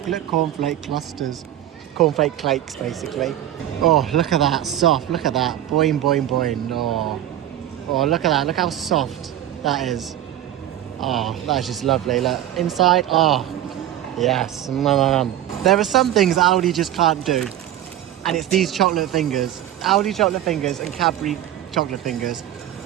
cornflake clusters. Cornflake cakes, basically. Oh, look at that, soft, look at that. Boing, boing, boing. Oh, look at that, look how soft that is. Oh, that's just lovely. Look, inside, oh, yes. There are some things Aldi just can't do, and it's these chocolate fingers. Aldi chocolate fingers and Cadbury chocolate fingers.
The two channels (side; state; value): left; quieter; 12.3 dB